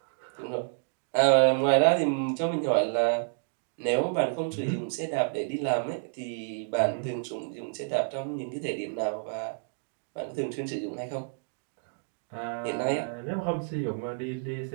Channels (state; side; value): silent; left; digital silence